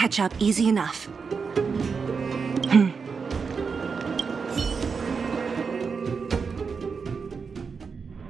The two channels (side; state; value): left; quieter; 5.4 dB